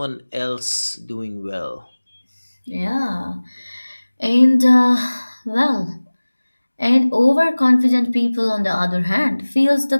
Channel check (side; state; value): both; inverted; correlation -1.00